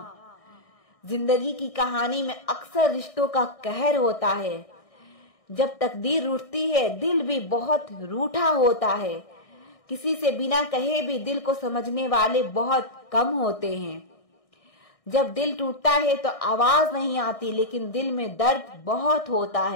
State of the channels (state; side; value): late; right; 1.6 ms